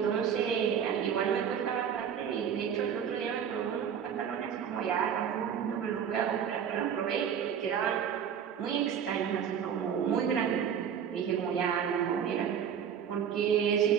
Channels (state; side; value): quieter; left; 8.1 dB